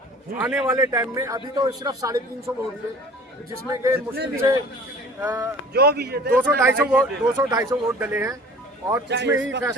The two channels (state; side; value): normal; both; correlation 0.46